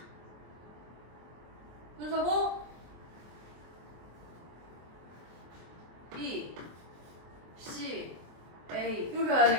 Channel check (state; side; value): late; left; 23 ms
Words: 순서고 B, C, A 이렇게 가야